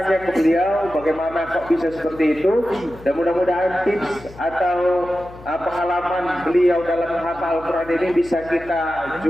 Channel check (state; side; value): noise; left; hum, 19 dB below the sound